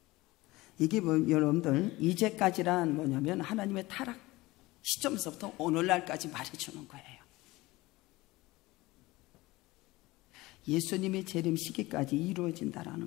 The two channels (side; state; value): right; quieter; 20.1 dB